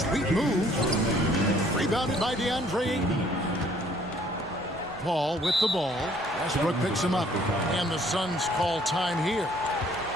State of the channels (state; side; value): normal; both; correlation 0.60